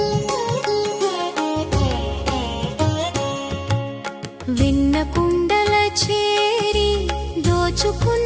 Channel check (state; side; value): identical; both; correlation 1.00